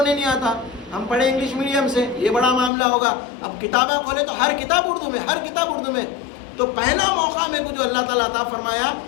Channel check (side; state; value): right; drops out; at 2.7 s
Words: نہیں آتا، ہم پڑھے انگلش میڈیم سے، یہ بڑا معاملہ ہوگا. اب کتابیں کھولے تو ہر کتاب اردو میں، ہر کتاب اردو میں. تو پہلا موقع میرے کو جو اللہ تعالیٰ عطا فرمایا،